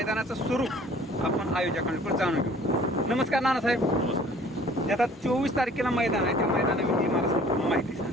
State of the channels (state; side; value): normal; both; correlation 0.52